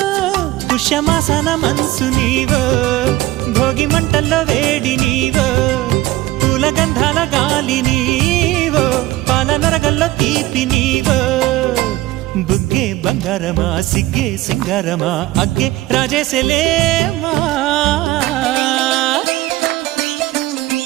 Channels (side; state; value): left; quieter; 17.0 dB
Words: పుష్యమాసన మనసు నీవో భోగి మంటల్లో వేడి నీవో పూల గంధాల గాలి నీవో పాల నరగల్లో తీపి నీవో బుగ్గే బంగారమా సిగ్గే సింగారమా అగ్గే రాజేసలేమా